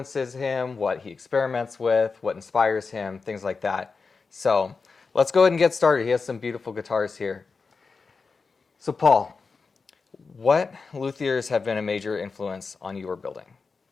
him, what he experiments with, what inspires him, things like that. So let's go ahead and get started. He has some beautiful guitars here. So Paul, what luthiers have been a major influence on your building?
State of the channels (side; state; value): right; quieter; 4.7 dB